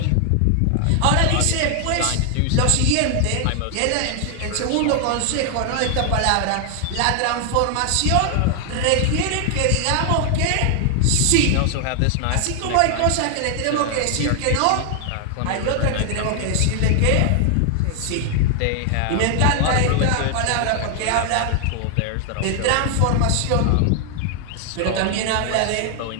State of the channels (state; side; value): different; both; correlation 0.00